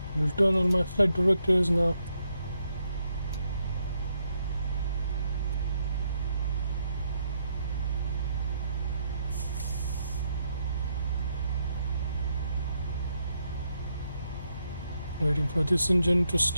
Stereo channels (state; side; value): inverted; both; correlation -0.78